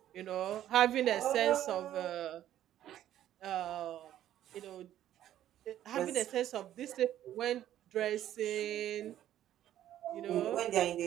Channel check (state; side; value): quieter; left; 12.0 dB